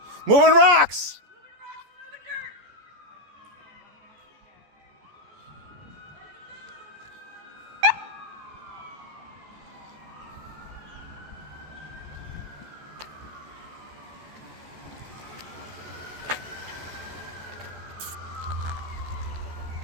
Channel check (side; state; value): left; late; 14 ms